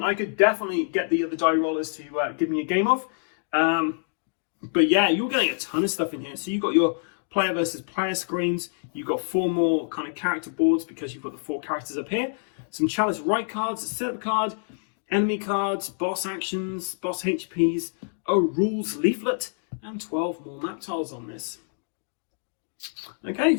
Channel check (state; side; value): silent; right; digital silence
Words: I could definitely get the other die rollers to give me a game of. But yeah, you're getting a ton of stuff in here. So you've got your player versus player screens. You've got 4 more kind of character boards because you've got the 4 characters up here. Some Chalice right cards, a setup card, enemy cards, boss actions, boss HPs, a rules leaflet, and 12 more map tiles on this. Okay,